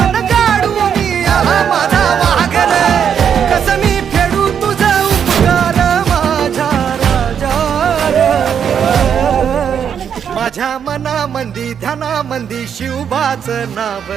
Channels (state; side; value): quieter; left; 8.0 dB